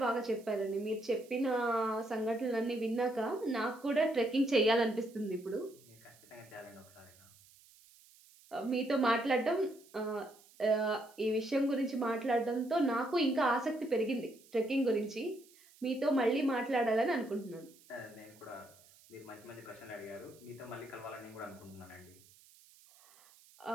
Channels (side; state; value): right; noise; hiss, 26 dB below the sound